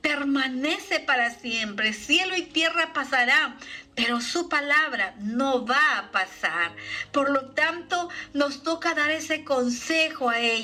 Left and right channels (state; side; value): identical; both; correlation 1.00